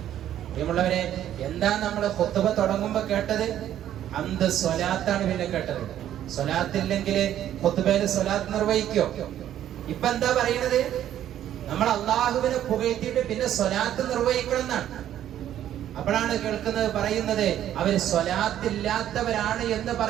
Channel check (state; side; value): quieter; left; 11.4 dB